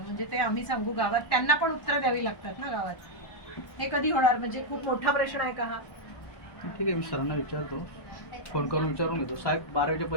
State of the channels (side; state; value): right; late; 1.1 ms